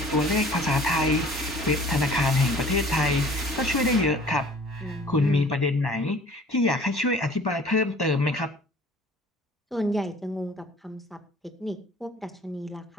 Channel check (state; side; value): normal; both; correlation 0.49